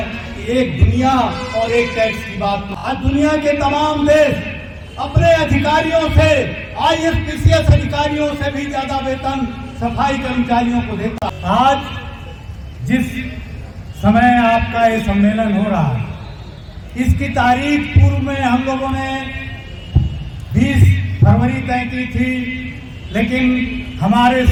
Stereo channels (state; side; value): identical; both; correlation 1.00